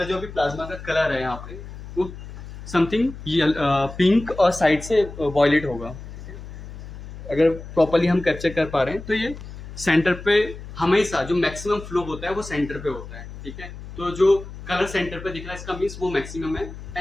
जो अभी प्लाज्मा का कलर है यहाँ पे, वो समथिंग पिंक और साइड से वॉयलेट होगा। अगर प्रॉपरली हम कैप्चर कर पा रहे हैं तो ये सेंटर पे हमेशा जो मैक्सिमम फ्लो होता है वो सेंटर पे होता है, ठीक है। तो जो कलर सेंटर पे दिख रहा है इसका मीन्स वो मैक्सिमम है।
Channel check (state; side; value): noise; left; hum, 13 dB below the sound